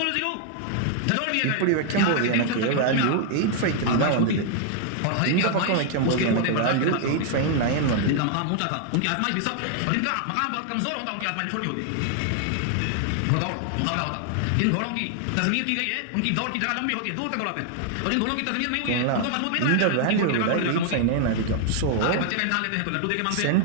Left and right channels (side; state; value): both; different; correlation 0.00